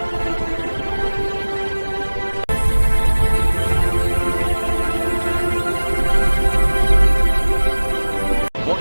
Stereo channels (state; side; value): inverted; both; correlation -1.00